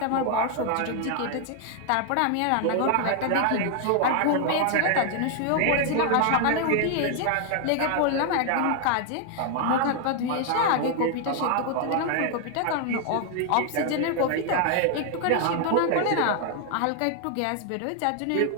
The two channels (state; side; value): different; both; correlation 0.00